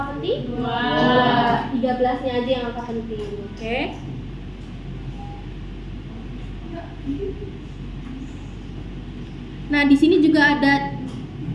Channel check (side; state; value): both; identical; correlation 1.00